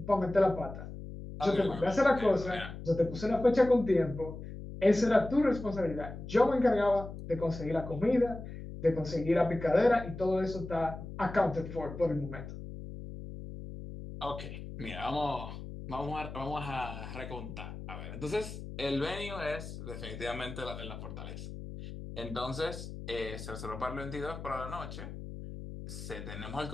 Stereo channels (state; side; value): noise; left; hum, 10 dB below the sound